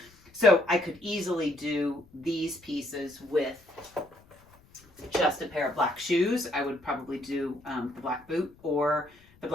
So I could easily do these pieces with just a pair of black shoes. I would probably do the black boot or the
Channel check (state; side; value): noise; left; rumble, 28 dB below the sound